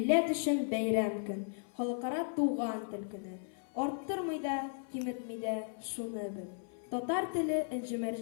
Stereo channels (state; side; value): silent; right; 54 dB below the other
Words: өчен бәйрәм көн. Халыкара туган тел көне. Арттырмый да, киметмий дә, шуны бел. Татар теле